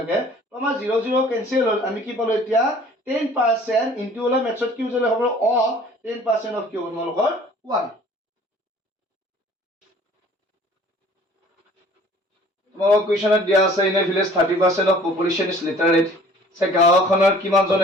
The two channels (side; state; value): both; normal; correlation 0.51